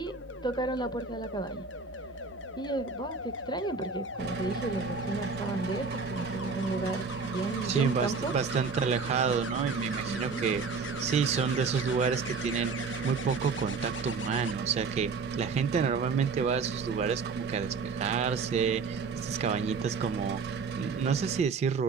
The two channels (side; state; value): left; quieter; 4.8 dB